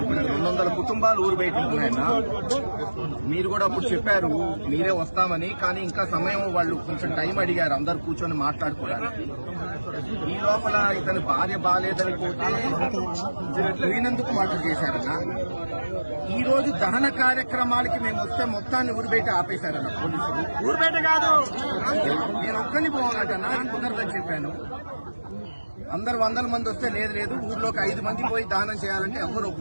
200 కుటుంబాలు ఊరు బయట ఉన్నాయన్న. మీరు కూడా అప్పుడు చెప్పారు మీరే వస్తామని, కానీ ఇంకా సమయం వాళ్ళు కొంచెం టైం అడిగారు అందరు కూర్చొని మాట్లాడుకోవడానికి. ఈ లోపల ఇతని భార్య బాగాలేదని పోతే పోయినందుకు మర్డర్ చేశారన్న. ఈ రోజు దహన కార్యక్రమాలకి మేము వస్తే మొత్తాన్ని ఊరు బయట ఆపేశారన్న పోలీసులు. ఊరు బయట కాదు, నేను ఒక్కని పోవాలటన్నా, కుదరదని చెప్పాను. అందరు 100 మంది వస్తే లేదు ఊర్లోకి 5 మంది పోయి దానం చేయాలంటే ఎవరు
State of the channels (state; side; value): inverted; both; correlation -1.00